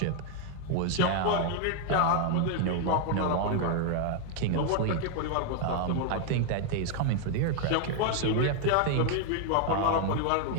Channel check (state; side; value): different; both; correlation 0.00